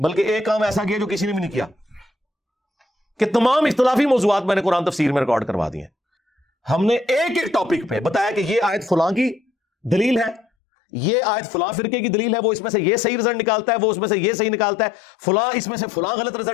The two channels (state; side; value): drops out; right; at 10.5 s